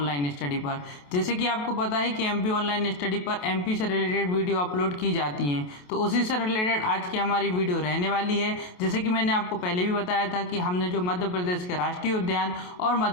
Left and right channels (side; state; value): right; late; 28 ms